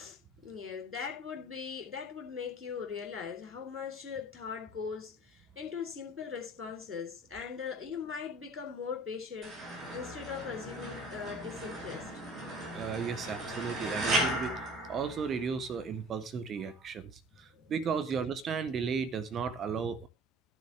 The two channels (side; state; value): both; normal; correlation 0.46